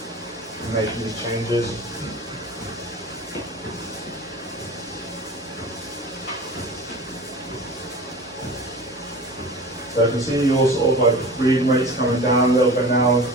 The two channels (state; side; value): normal; both; correlation 0.37